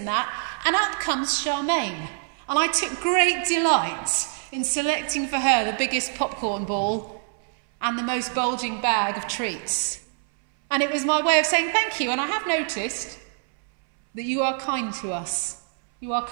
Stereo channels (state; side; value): silent; left; 62 dB below the other